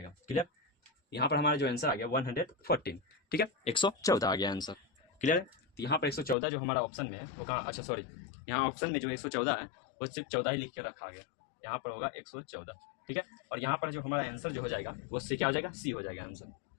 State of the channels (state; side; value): drops out; right; at 6.4 s